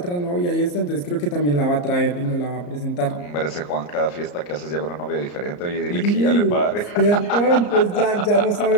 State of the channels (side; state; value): right; late; 34 ms